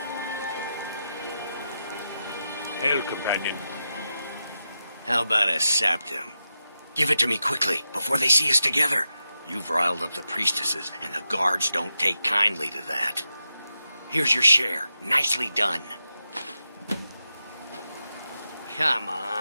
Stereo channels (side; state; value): both; inverted; correlation -0.89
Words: Hail, companion. How about a septum? Give it to me quickly, before they see us together. You've riled up the priestesses, and the guards don't take kindly to that. Here's your share. Nicely done. Come